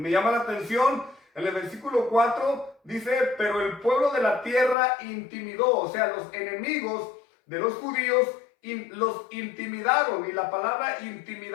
me llama la atención, en el versículo 4 dice, pero el pueblo de la tierra intimidó, o sea, los enemigos de los judíos los intimidaron. Y la palabra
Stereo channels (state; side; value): drops out; right; at 4.8 s